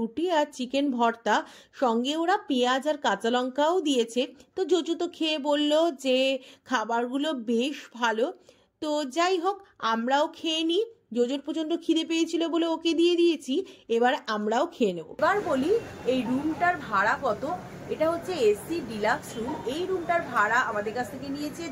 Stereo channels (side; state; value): both; identical; correlation 1.00